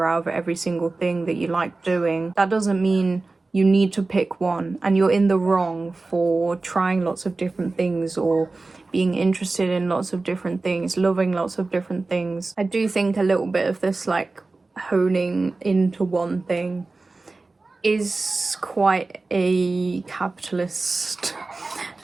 out of every single thing that you like doing. That doesn't mean you need to pick one, and you're in the wrong for trying lots of different things, or being interested in lots of different things, loving lots of different things. I do think a little bit of this like honing into one thing is quite a capitalist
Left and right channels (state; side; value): quieter; left; 3.5 dB